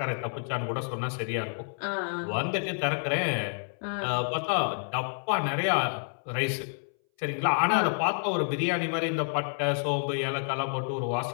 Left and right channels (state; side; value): silent; right; 59 dB below the other